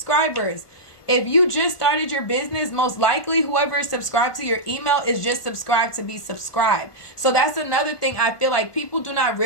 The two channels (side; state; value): right; late; 1.3 ms